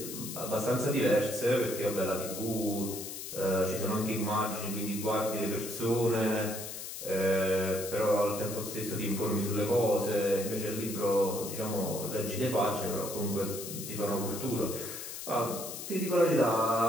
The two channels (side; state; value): left; noise; hiss, 8 dB below the sound